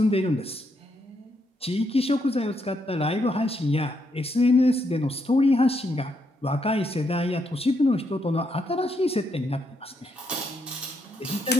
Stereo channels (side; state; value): both; normal; correlation 0.78